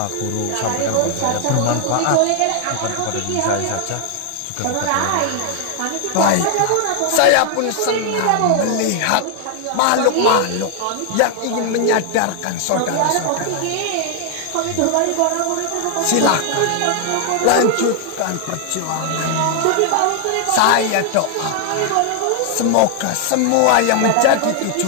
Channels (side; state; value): both; different; correlation 0.00